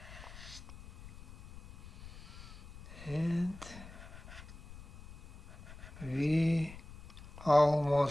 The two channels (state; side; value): noise; left; rumble, 16 dB below the sound